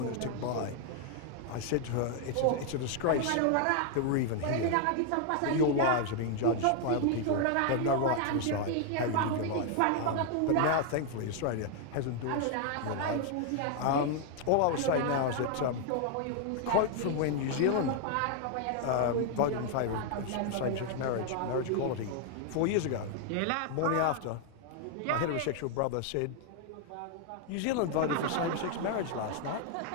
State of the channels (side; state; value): both; different; correlation 0.00